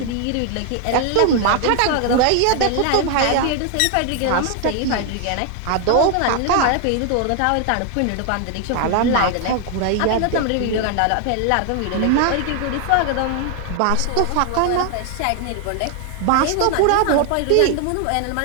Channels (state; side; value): different; both; correlation 0.00